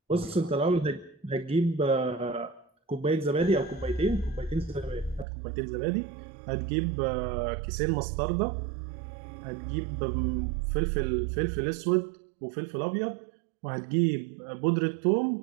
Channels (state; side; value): drops out; left; at 5.2 s